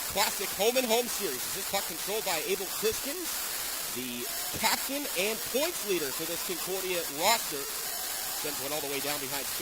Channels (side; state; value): both; identical; correlation 1.00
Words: Classic home-and-home series. This puck controlled by Abel Kriskins, the captain and points leader for this Concordia roster. Sends one all the way down behind